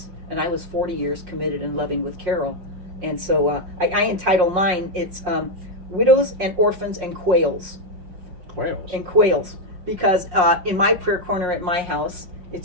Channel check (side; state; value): left; late; 5.5 ms